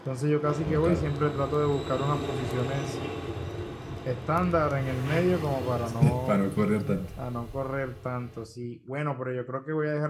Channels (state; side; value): identical; both; correlation 1.00